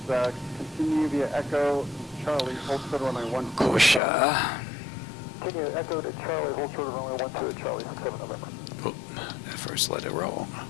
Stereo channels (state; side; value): drops out; right; at 4.0 s